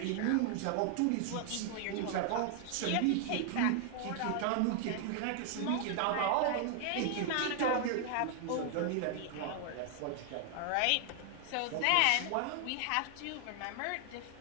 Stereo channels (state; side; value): different; both; correlation 0.00